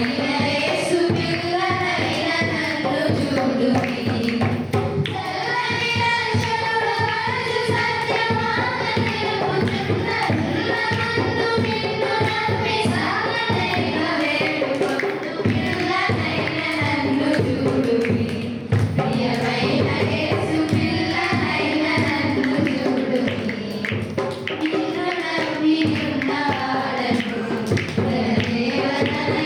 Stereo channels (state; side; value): identical; both; correlation 1.00